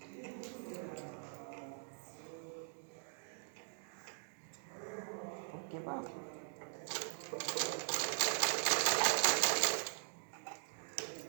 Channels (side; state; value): left; silent; digital silence